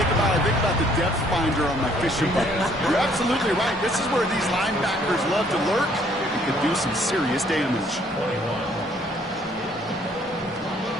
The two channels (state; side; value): normal; both; correlation 0.63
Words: about? I think about the depth finder on my fishing boat. You're absolutely right. This is where these linebackers love to lurk and can do some serious damage.